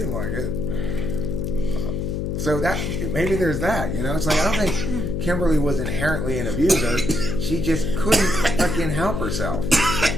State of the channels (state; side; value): noise; left; hum, 2 dB below the sound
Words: like it. So that maybe there's that, It's like I don't think Kimberly was inherently an abuser. She just couldn't fucking help herself.